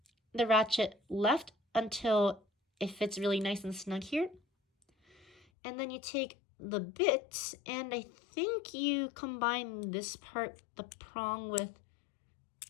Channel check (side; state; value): right; drops out; at 5.4 s